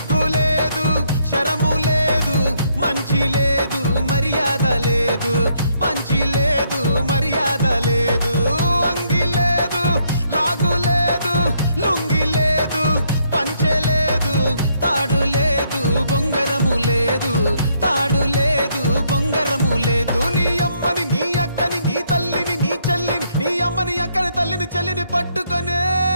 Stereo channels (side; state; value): both; inverted; correlation -0.72